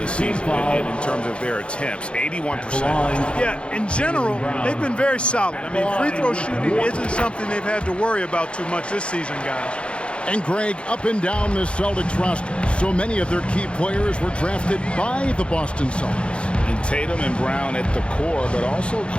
season in terms of their attempts, 81%. Yeah, in general, they've been very solid. I mean, free throw shooting isn't something they've had to worry about too much this season, guys. And Greg, up and down the Celtics roster, so many of their key players were drafted by the Boston Celtics. And Tatum and Brown at the core, but also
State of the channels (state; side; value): late; right; 0.058 ms